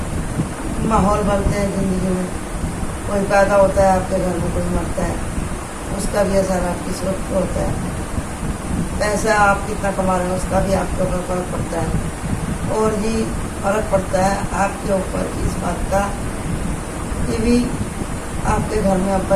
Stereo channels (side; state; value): both; identical; correlation 1.00